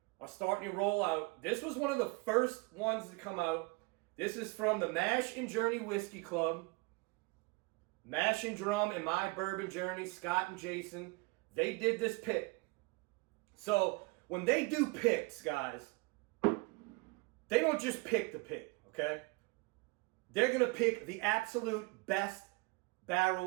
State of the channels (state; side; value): quieter; left; 26.4 dB